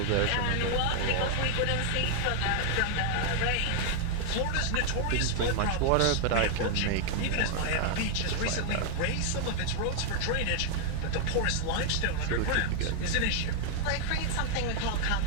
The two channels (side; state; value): both; different; correlation 0.00